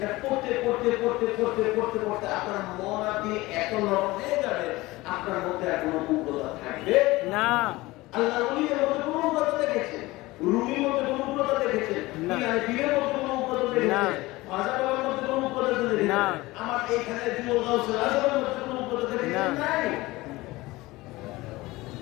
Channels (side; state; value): right; quieter; 20.1 dB